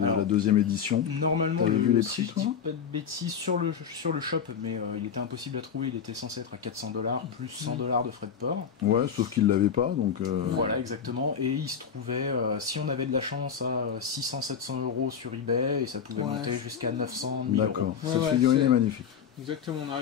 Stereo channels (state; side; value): quieter; right; 7.3 dB